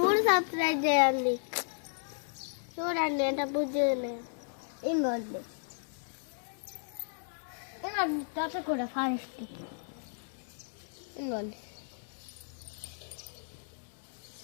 సబ్స్క్రైబ్ చేయండి. చూడండి ఎంత బుజ్జి ఉన్నాయి. ఇంకోండి కూడా ఫారెస్ట్. ఇంకోండి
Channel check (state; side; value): silent; right; digital silence